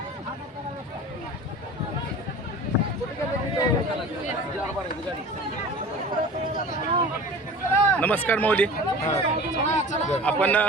नमस्कार माऊली. आपण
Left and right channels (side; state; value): both; normal; correlation 0.39